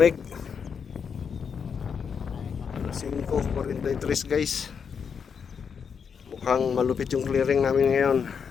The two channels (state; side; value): quieter; right; 6.6 dB